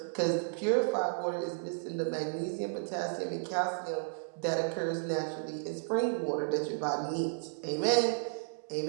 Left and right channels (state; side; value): silent; left; digital silence